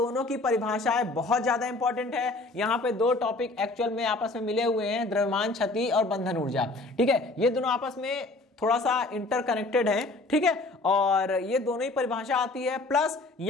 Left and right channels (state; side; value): quieter; right; 3.1 dB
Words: की परिभाषाएं बहुत ज्यादा इंपॉर्टेंट है। यहाँ पे दो टॉपिक एक्चुअल में आपस में मिले हुए हैं, द्रव्यमान क्षति और बंधन ऊर्जा। ठीक है, ये दोनों आपस में थोड़ा सा इंटरकनेक्टेड है। ठीक है, और ये दोनों ही परिभाषा आती है, प्लस